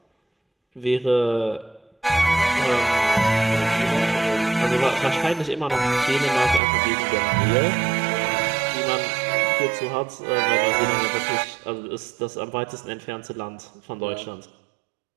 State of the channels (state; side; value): drops out; left; at 6.6 s